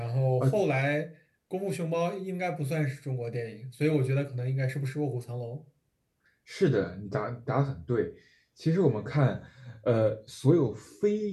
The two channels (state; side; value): identical; both; correlation 1.00